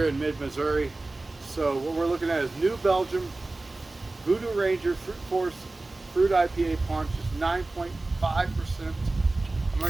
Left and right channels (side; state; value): left; quieter; 3.1 dB